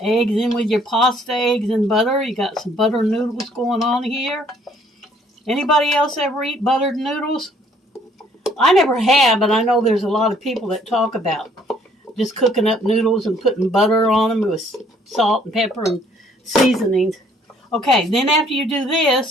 eggs in with your pasta, eggs and butter. You got some butter noodles going on here. Anybody else ever eat buttered noodles? I never have, but I know there's a lot of people that talk about just cooking up noodles and putting butter on them with salt and pepper and seasonings. Okay, then after you do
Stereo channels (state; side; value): normal; both; correlation 0.62